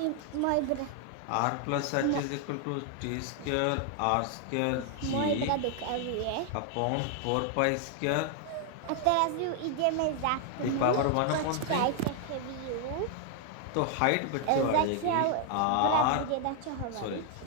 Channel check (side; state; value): both; different; correlation 0.00